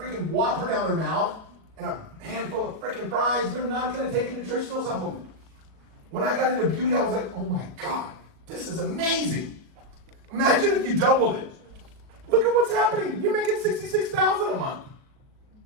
Whopper down their mouth and a handful of freaking fries, they're not going to take a nutritional supplement. When I got into beauty, I was like, oh my God, this is amazing. Imagine if you doubled it. Look at what's happening. You're making $66,000 a month.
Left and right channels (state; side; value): late; left; 37 ms